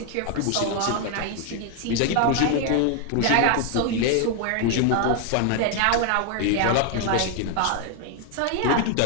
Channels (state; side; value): different; both; correlation 0.01